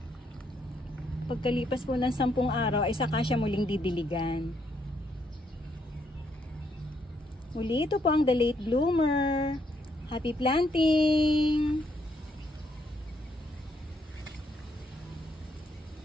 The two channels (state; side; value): normal; both; correlation 0.74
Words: Pagkalipas po ng 10 araw ay saka siya muling didiligan. Muli, ito po ang the late bloomer. Happy planting!